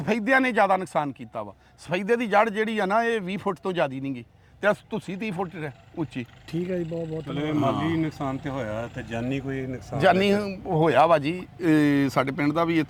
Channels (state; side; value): identical; both; correlation 1.00